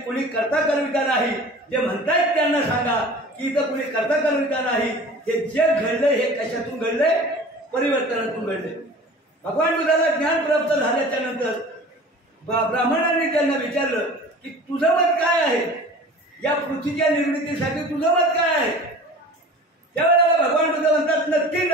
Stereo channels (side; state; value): both; normal; correlation 0.41